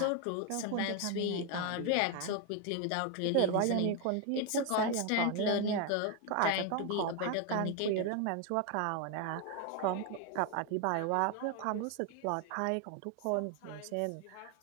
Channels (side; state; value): both; different; correlation 0.01